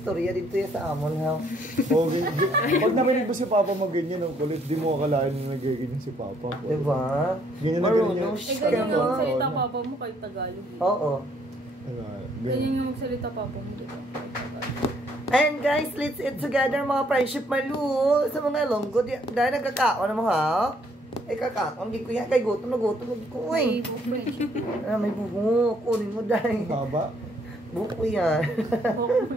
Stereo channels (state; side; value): normal; both; correlation 0.67